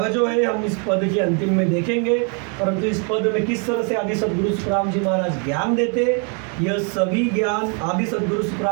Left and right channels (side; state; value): left; quieter; 38.4 dB